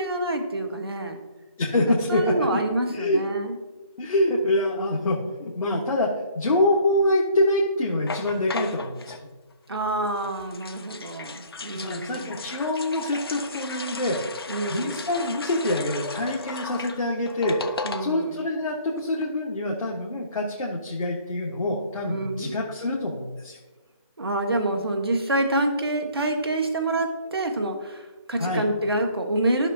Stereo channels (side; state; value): both; inverted; correlation -0.55